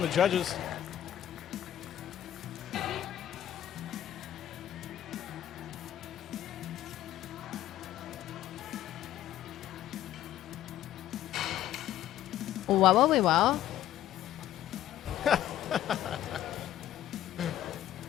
the judges. Wow, wow, wow.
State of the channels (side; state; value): right; quieter; 12.2 dB